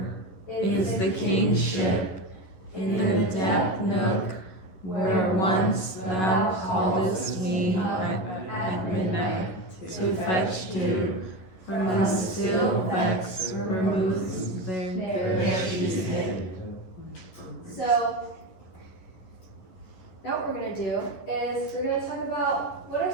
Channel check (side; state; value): right; late; 11 ms